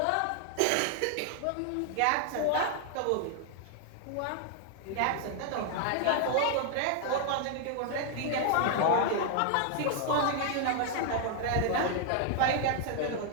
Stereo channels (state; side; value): different; both; correlation 0.00